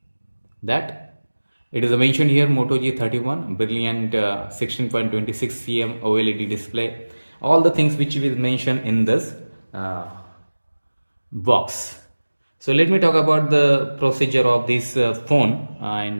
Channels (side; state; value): both; inverted; correlation -1.00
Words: that it is mentioned here Moto G31 brilliant 16.26 cm OLED display. All the things which is mentioned in this box. So let me talk about the procedure of this phone,